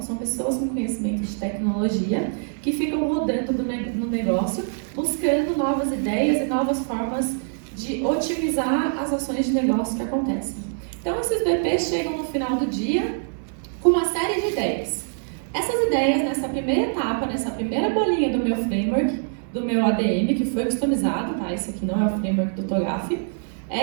são pessoas com conhecimento de tecnologia, que ficam rodando no negócio, buscando novas ideias e novas formas de otimizar as ações de negócio que acontecem. Então, esses BPs chegam no final do dia com uma série de ideias. Essas ideias, nessa primeira etapa, nessa primeira bolinha do meu framework, do meu ADM, que foi customizado, tá? Esse aqui não é o framework do TOGAF.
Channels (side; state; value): left; silent; digital silence